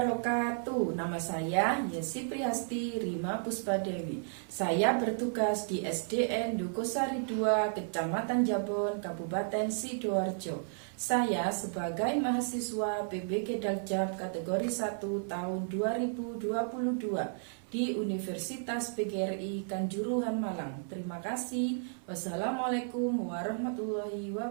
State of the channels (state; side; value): silent; left; 56 dB below the other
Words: Nama saya Yesi Priyasti Rima Puspadewi. Saya bertugas di SDN Dukosari 2, Kecamatan Jabon, Kabupaten Sidoarjo. Saya sebagai mahasiswa PBG Daljab kategori 1 tahun 2022 di Universitas PGRI Kanjuruhan Malang. Terima kasih. Wassalamualaikum warahmatullahi